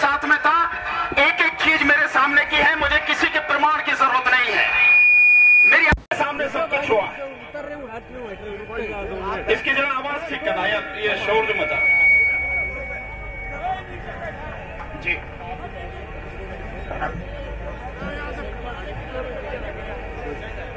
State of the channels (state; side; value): identical; both; correlation 1.00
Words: में था, एक एक चीज मेरे सामने की है, मुझे किसी के प्रमाण की जरूरत नहीं है, मेरे सामने सब कुछ हुआ। इसकी जरा आवाज ठीक करना यार, ये शोर जो मचा जी।